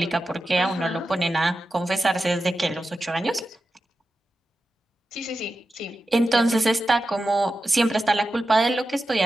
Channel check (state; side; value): normal; both; correlation 0.91